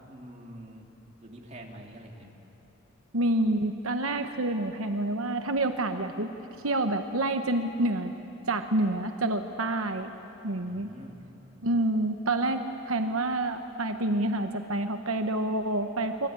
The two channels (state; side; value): normal; both; correlation 0.19